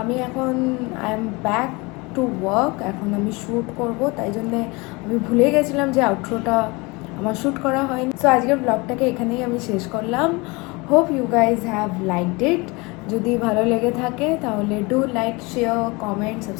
আমি এখন I am back to work, এখন আমি শ্যুট করব, তাই জন্যে আমি ভুলে গেছিলাম যে আউটরোটা আমার শ্যুট করা হয়নি। সো আজকের ব্লগটাকে এখানেই আমি শেষ করলাম। Hope you guys have liked it. যদি ভালো লেগে থাকে তাহলে do like, share, comment,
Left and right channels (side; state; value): right; quieter; 25.9 dB